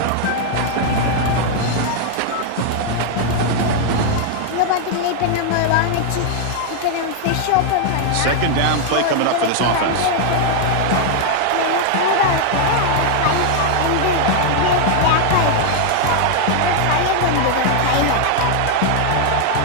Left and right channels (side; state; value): both; different; correlation 0.00